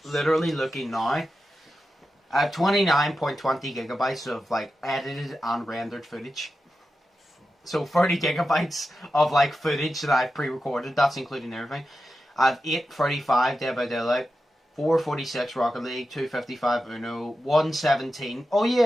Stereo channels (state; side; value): normal; both; correlation 0.91